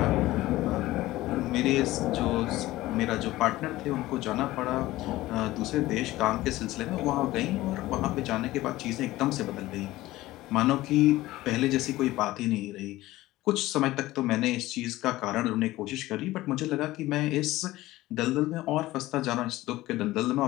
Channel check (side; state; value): right; quieter; 17.2 dB